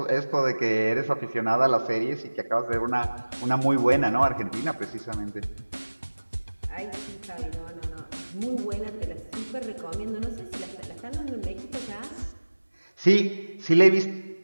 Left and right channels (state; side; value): inverted; both; correlation -1.00